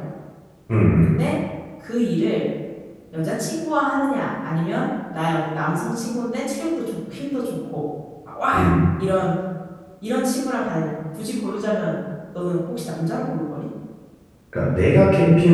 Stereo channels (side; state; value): both; identical; correlation 1.00